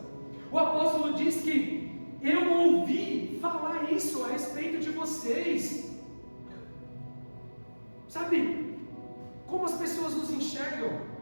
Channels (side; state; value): both; inverted; correlation -1.00